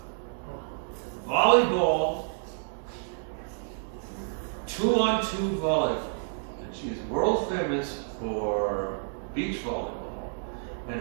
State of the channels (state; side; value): silent; left; digital silence